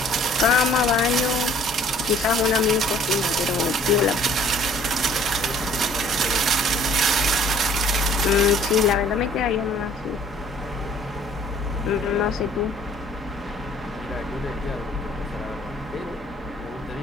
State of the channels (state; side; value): normal; both; correlation 0.55